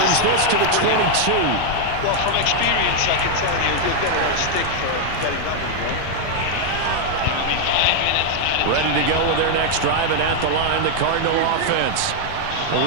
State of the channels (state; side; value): different; both; correlation 0.00